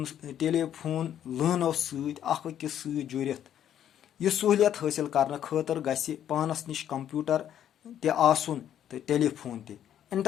लाइनों सकिस सत जुड़ित। यह सहूलियत हासिल करने खतर गछि पानस निश कंप्यूटर ते आसुन तो टेलीफोन ते।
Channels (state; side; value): quieter; right; 10.3 dB